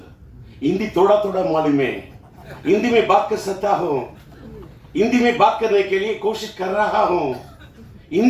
हिंदी थोड़ा थोड़ा मालूम है, हिंदी में बात कर सकता हूँ, हिंदी में बात करने के लिए कोशिश कर रहा हूँ,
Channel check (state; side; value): identical; both; correlation 1.00